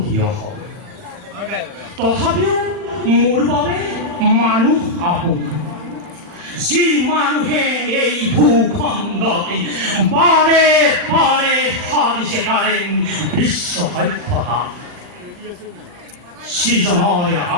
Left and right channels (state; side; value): late; left; 39 ms